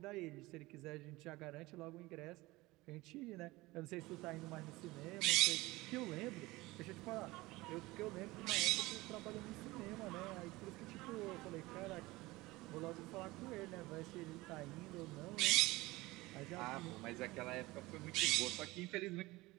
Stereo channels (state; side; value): quieter; left; 20.5 dB